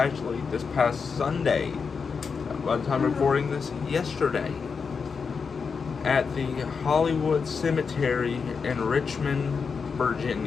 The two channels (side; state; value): right; quieter; 5.5 dB